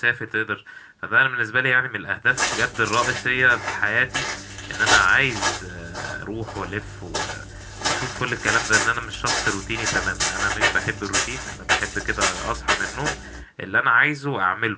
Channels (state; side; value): identical; both; correlation 1.00